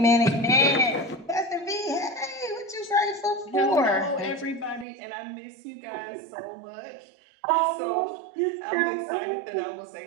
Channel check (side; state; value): left; drops out; at 4.9 s